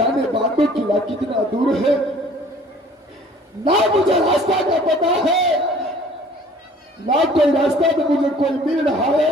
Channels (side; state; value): both; normal; correlation 0.52